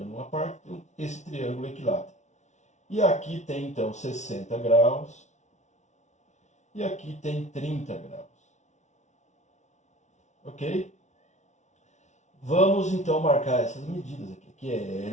uma parte, esse triângulo equilátero. E aqui tem então 60 graus, e aqui tem 30 graus. Ok? Vamos então marcar essas medidas aqui. Aqui é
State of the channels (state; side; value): late; right; 0.33 ms